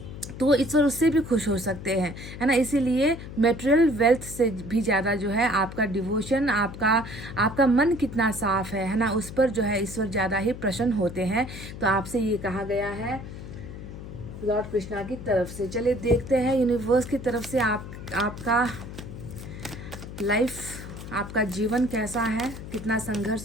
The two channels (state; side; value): noise; left; hum, 11 dB below the sound